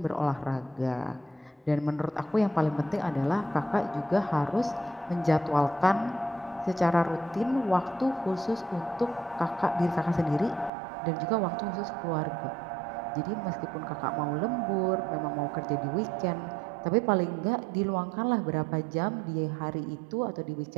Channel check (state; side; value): drops out; left; at 10.7 s